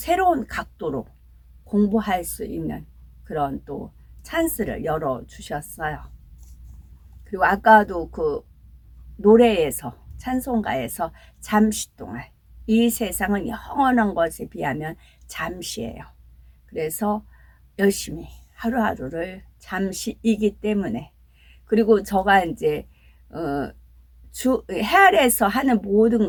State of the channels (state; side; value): identical; both; correlation 1.00